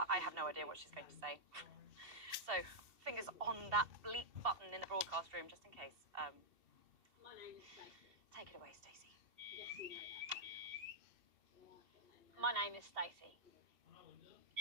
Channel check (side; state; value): left; late; 2.7 ms